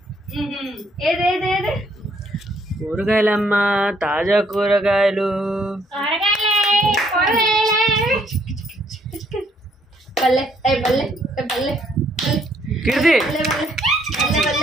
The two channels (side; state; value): both; normal; correlation 0.68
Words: ఏదేదేదే కూరగాయలమ్మా, తాజా కూరగాయలు. బల్లె బల్లె బల్లె కీర్తి